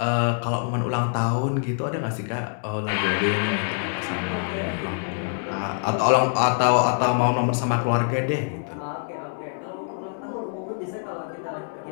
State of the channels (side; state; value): right; silent; 62 dB below the other